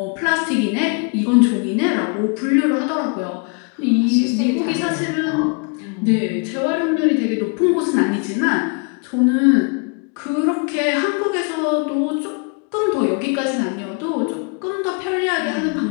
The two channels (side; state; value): right; quieter; 35.8 dB